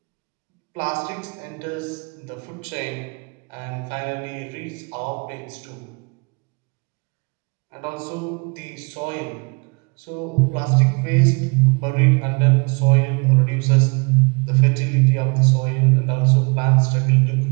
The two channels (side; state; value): left; quieter; 31.3 dB